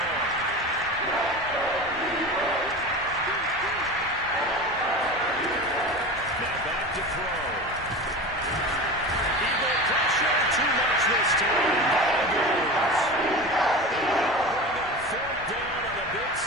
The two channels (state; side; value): normal; both; correlation 0.30